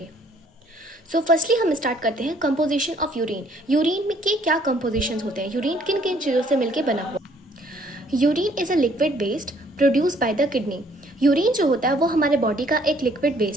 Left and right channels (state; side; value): normal; both; correlation 0.62